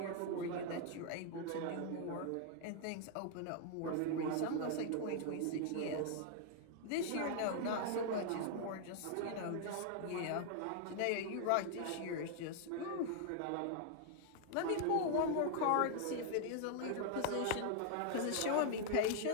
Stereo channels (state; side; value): different; both; correlation -0.01